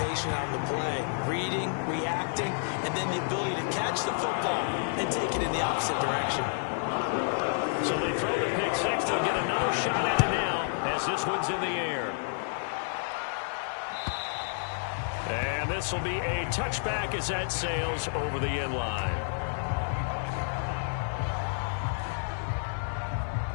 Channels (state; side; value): silent; right; digital silence